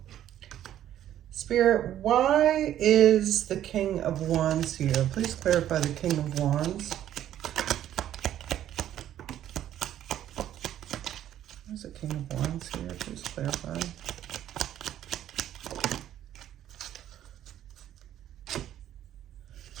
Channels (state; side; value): quieter; left; 11.6 dB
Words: Spirit, why is the King of Wands here? Please clarify the King of Wands. Where's the King of Wands here? Please clarify.